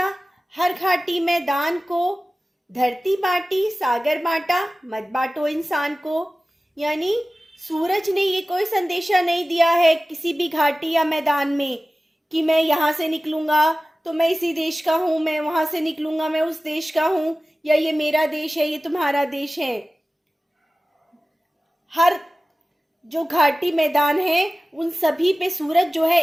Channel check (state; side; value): normal; both; correlation 0.97